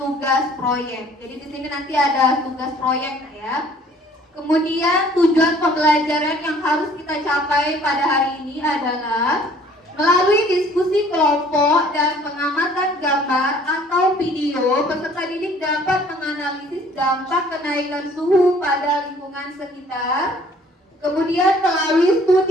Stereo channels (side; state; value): both; normal; correlation 0.56